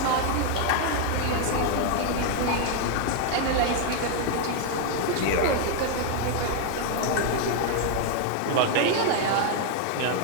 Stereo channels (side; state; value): both; different; correlation 0.00